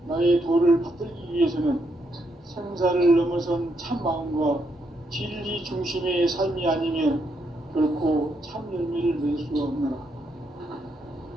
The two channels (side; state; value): both; normal; correlation 0.78